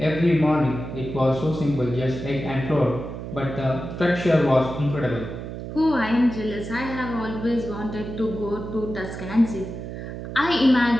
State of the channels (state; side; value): noise; right; hum, 8 dB below the sound